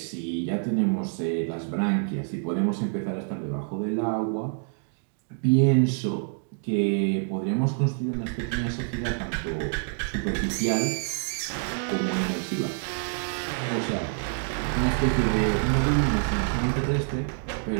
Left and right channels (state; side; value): silent; left; 60 dB below the other